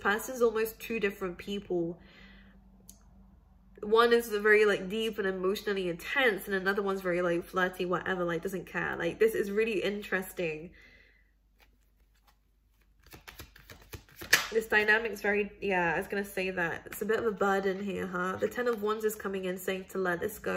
is almost 2 different people. One is very like deep and emotionally intense, and another one's very like flirty, whatever, like doesn't care. Like this is really interesting. This dynamic is very, yeah, I was gonna say that. It's a bit of a burden here, huh? The Ten of Wands is coming in saying to let this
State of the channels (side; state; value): both; identical; correlation 1.00